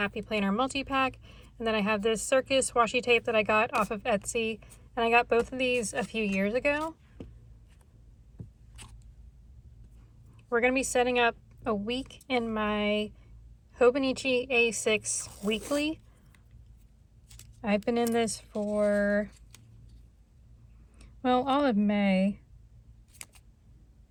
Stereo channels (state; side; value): identical; both; correlation 1.00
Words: Planner multi-pack, and then I have this Circus washi tape that I got off of Etsy, and I got both of these a few years ago. We're going to be setting up a week in my Hobonichi A6 Weekly. I've been in this for, well, all of May.